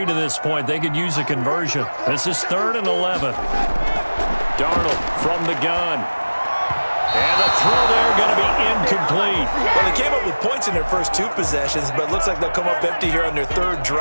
to this point. They could use a conversion. This is 3rd and 11. Darnold from the gun. And the throw there going to be incomplete. Well, they came up with points in their first 2 possessions, but it looks like they'll come up empty here on their 3rd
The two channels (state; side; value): inverted; both; correlation -1.00